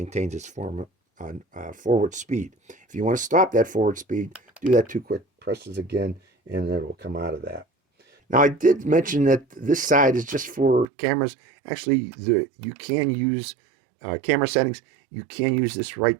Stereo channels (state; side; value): drops out; left; at 10.9 s